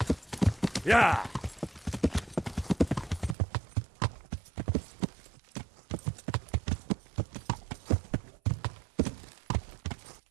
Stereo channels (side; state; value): left; drops out; at 3.4 s